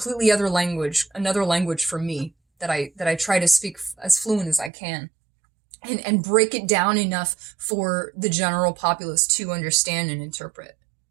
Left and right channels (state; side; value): drops out; left; at 4.7 s